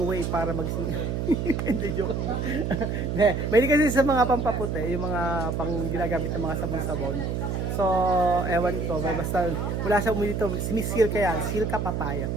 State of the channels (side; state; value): right; noise; hum, 1 dB below the sound